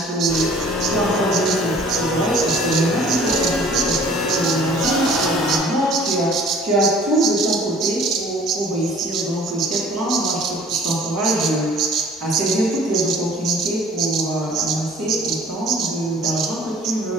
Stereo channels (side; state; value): both; normal; correlation 0.51